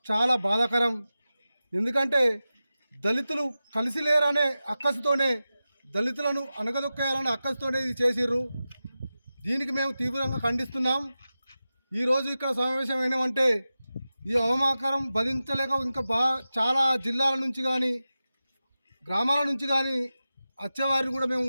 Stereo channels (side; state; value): both; inverted; correlation -0.94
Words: చాలా బాధాకరం. ఎందుకంటే దళితులు కలిసి లేరనే అక్కసుతోనే దళితులను అణగదొక్కేయాలనే అక్కసుతోనే ఇది చేసిర్రు. దీనికి మేము తీవ్రంగా ఖండిస్తున్నాం. ఈరోజు ఇక్కడ సమావేశం అయినామంటే ఈ అవమాకరం భరించలేక ఇంకా చాలా జిల్లాల నుంచి కానీ గ్రామాల నుంచి కానీ వచ్చేవారిని కూడా మేము,